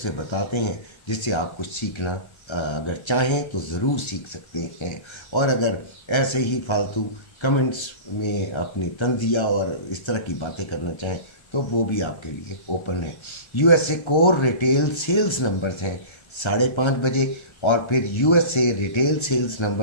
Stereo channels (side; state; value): right; late; 1.3 ms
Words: बताते हैं जिससे आप कुछ सीखना अगर चाहें तो ज़रूर सीख सकते हैं। और अगर ऐसे ही फालतू कमेंट्स में अपनी तंज़िया और इस तरह की बातें करना चाहें तो वो भी आपके लिए ओपन है। USA core retail sales numbers हैं 5:30 बजे, और फिर USA रिटेल सेल्स